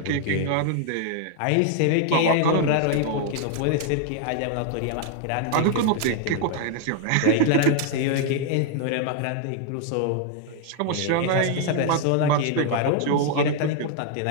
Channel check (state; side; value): different; both; correlation 0.00